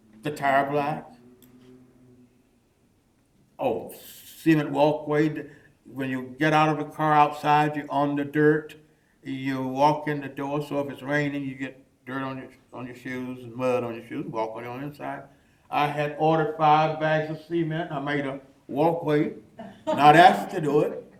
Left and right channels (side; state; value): both; identical; correlation 1.00